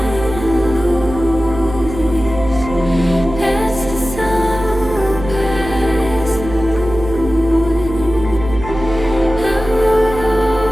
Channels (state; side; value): noise; right; hum, 10 dB below the sound